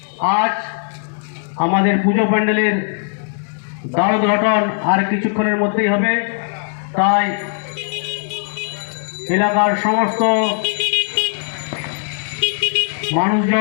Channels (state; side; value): silent; right; digital silence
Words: আজ আমাদের পুজো প্যান্ডেলের দ্বারোদ্ঘাটন আর কিছুক্ষণের মধ্যেই হবে, তাই এলাকার সমস্ত